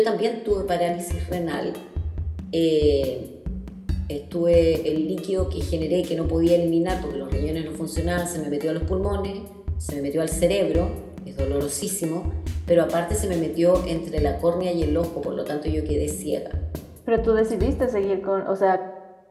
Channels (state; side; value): identical; both; correlation 1.00